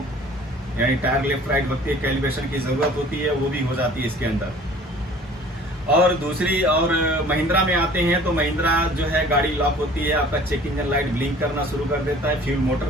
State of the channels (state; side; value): normal; both; correlation 0.49